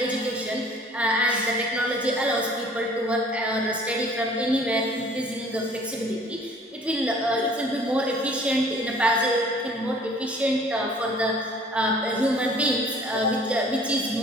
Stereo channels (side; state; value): both; normal; correlation 0.53